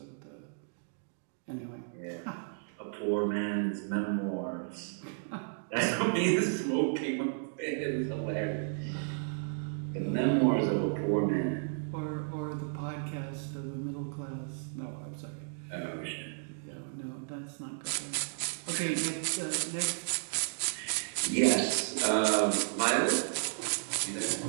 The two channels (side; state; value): left; silent; digital silence